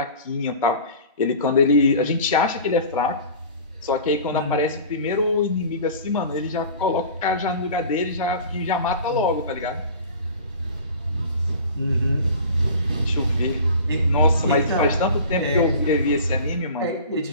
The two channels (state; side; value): inverted; both; correlation -0.40